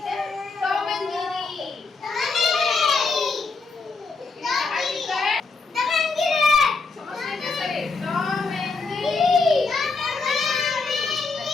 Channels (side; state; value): right; quieter; 4.1 dB